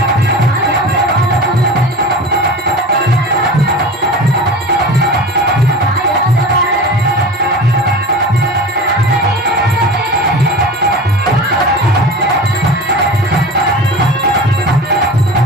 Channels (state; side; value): normal; both; correlation 0.34